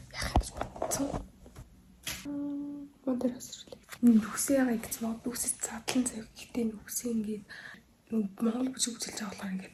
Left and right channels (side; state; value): both; identical; correlation 1.00